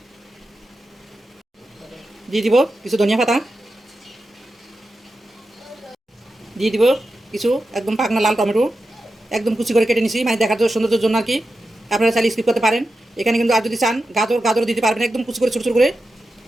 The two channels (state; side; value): normal; both; correlation 0.90